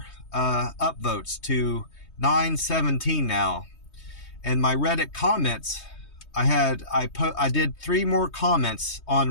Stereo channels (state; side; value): late; right; 3.2 ms